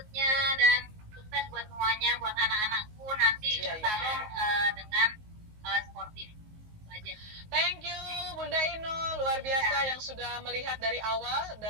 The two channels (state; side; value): late; left; 19 ms